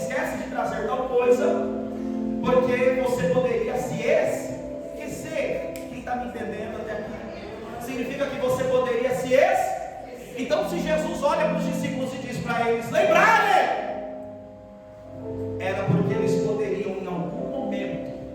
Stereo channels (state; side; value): identical; both; correlation 1.00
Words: de trazer tal coisa, porque você poderia se esquecer. Quem está me entendendo até aqui? Significa que você poderia se esquecer. Então, se Jesus olha para os discípulos e diz para eles lembrarem, era porque eles poderiam em algum momento,